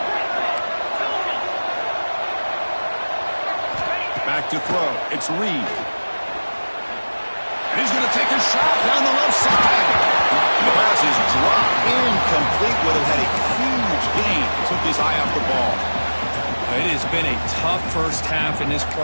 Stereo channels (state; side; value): inverted; both; correlation -1.00